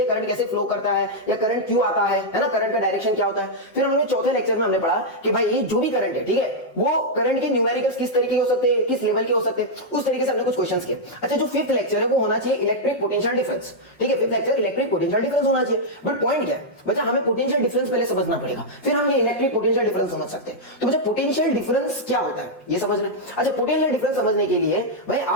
करंट कैसे फ्लो करता है या करंट क्यों आता है ना, करंट का डायरेक्शन क्या होता है। फिर हमने चौथे लेक्चर में हमने पढ़ा कि भाई ये जो भी करंट है, ठीक है, वो करंट के न्यूमेरिकल्स किस तरीके के हो सकते हैं, किस लेवल के हो सकते हैं, उस तरीके से हमने कुछ क्वेश्चंस किए। अच्छा, जो फिफ्थ लेक्चर है वो होना चाहिए इलेक्ट्रिक पोटेंशियल डिफरेंस, ठीक है, fifth lecture electric potential difference होना चाहिए। बट पॉइंट क्या है बच्चा, हमें पोटेंशियल डिफरेंस पहले समझना पड़ेगा, फिर हम ये इलेक्ट्रिक पोटेंशियल डिफरेंस समझ सकते हैं। तो बच्चा पोटेंशियल डिफरेंस क्या होता है ये समझना है। अच्छा, पोटेंशियल डिफरेंस समझने के लिए भाई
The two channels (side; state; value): right; late; 5.6 ms